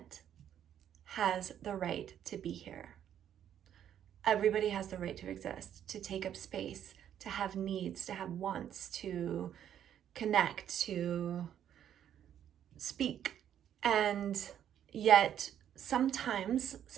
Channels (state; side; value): quieter; left; 10.0 dB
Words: has the right to be here. Everybody has the right to exist, to take up space, to have needs, to have wants, to connect, to speak. And yet sometimes